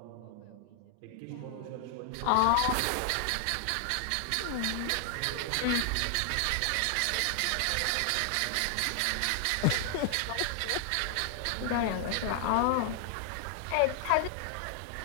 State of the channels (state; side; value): different; both; correlation 0.00